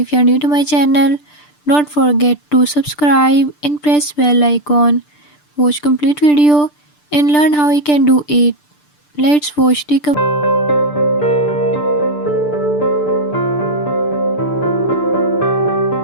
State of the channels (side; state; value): right; late; 6.8 ms